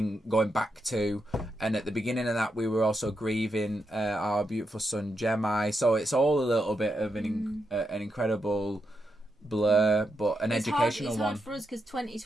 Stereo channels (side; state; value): both; normal; correlation 0.83